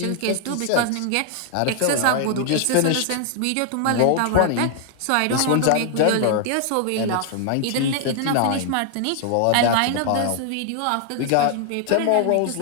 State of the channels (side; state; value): both; different; correlation 0.00